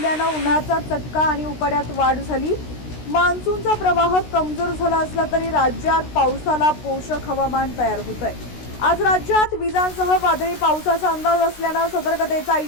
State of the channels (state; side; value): late; right; 16 ms